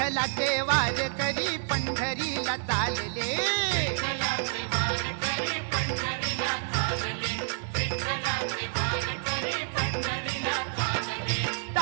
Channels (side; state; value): left; silent; digital silence